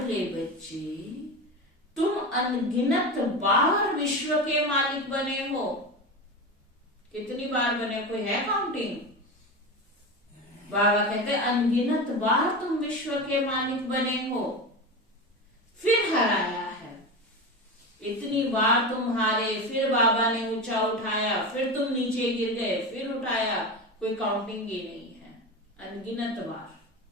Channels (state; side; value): normal; both; correlation 0.23